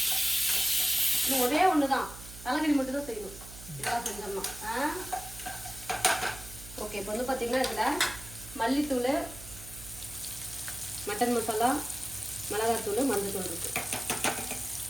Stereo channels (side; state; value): right; noise; hum, 15 dB below the sound